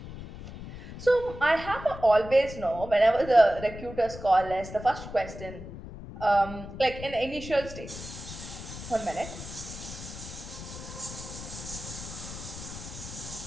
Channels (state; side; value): noise; left; rumble, 11 dB below the sound